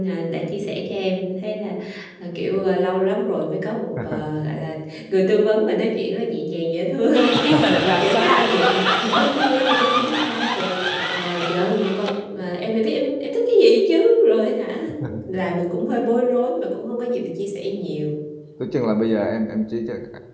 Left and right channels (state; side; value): identical; both; correlation 1.00